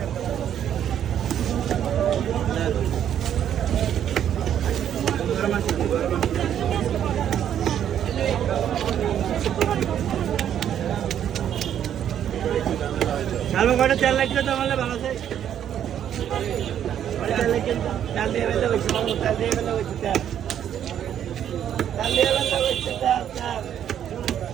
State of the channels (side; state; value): left; quieter; 9.9 dB